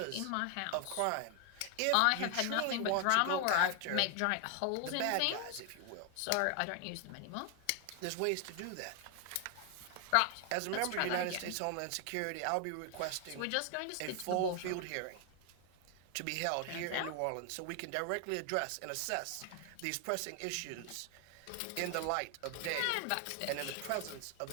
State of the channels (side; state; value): both; different; correlation 0.00